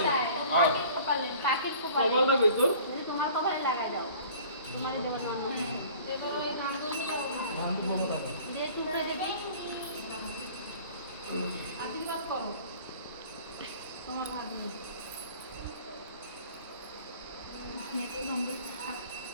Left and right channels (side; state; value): both; inverted; correlation -0.48